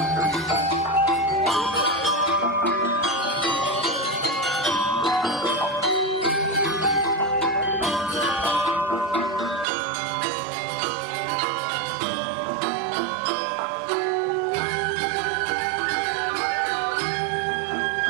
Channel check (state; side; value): drops out; left; at 9.7 s